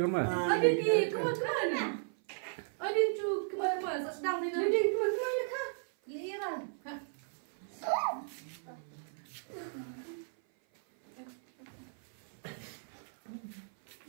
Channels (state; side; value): silent; left; 54 dB below the other